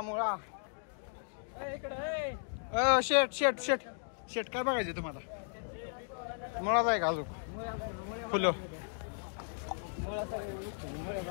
मुळा शेट शेट शेट शेट काय बघायचं तुम्हाला मुळाच आहे का अजून फुलं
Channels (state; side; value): silent; right; digital silence